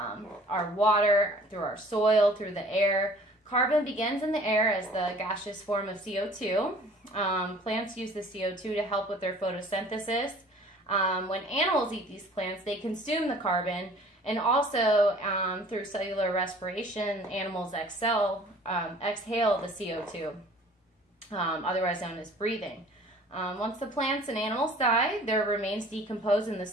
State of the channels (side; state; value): both; normal; correlation 0.50